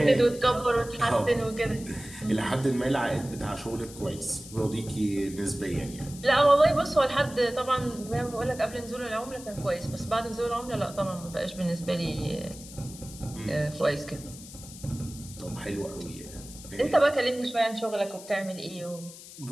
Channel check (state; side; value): noise; left; hiss, 16 dB below the sound